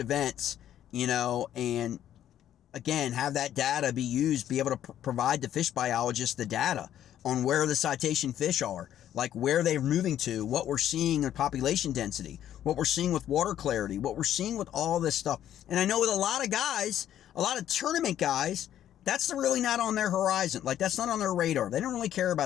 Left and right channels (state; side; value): quieter; right; 11.2 dB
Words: and again, have that data be used, be able to provide the fish biologists the data on where the citation fish are, like where they're moving to, what we're seeing in population density, what we're seeing with water clarity, what we're seeing with all this stuff. And I know with a lot of guys, a lot of tournament guys, that's really not on their horizon. Like, that's not on their radar. They don't really care